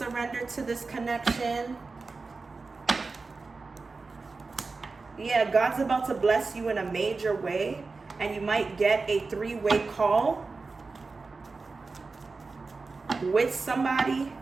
to this connection. Yeah, God's about to bless you in a major way, and you might get a three-way call with somebody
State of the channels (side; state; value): left; quieter; 4.0 dB